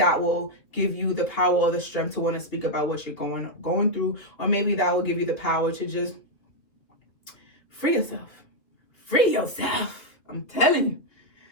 will give you the power or the strength to want to speak about what you're going through, or maybe that will give you the power to just free yourself. Free yourself. I'm telling you.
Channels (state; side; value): late; right; 3.0 ms